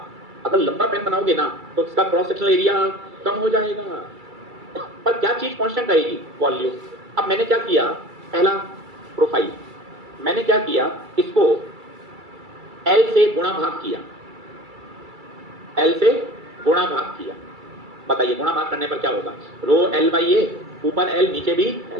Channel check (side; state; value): left; late; 2.3 ms